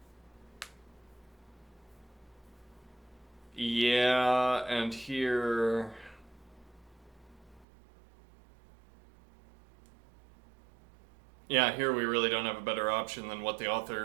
Yeah, and here... Yeah, here we really don't have a better option than what that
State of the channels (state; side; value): drops out; left; at 7.7 s